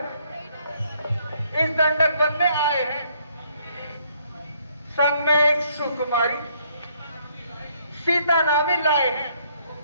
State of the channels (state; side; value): inverted; both; correlation -0.68